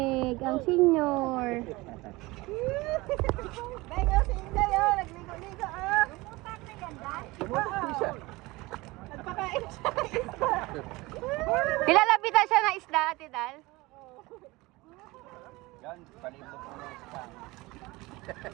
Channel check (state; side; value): quieter; left; 21.7 dB